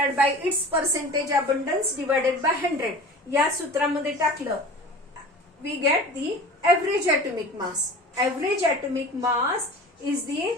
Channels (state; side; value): normal; both; correlation 0.39